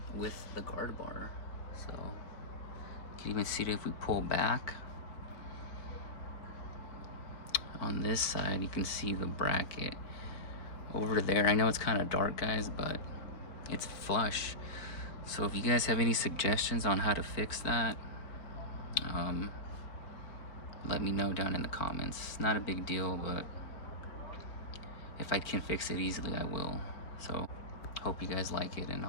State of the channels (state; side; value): late; right; 4.4 ms